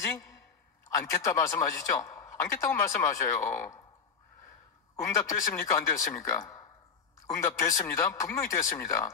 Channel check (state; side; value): quieter; right; 6.0 dB